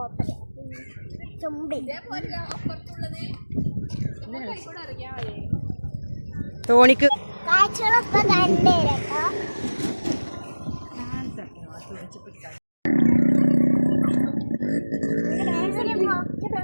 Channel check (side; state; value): both; inverted; correlation -1.00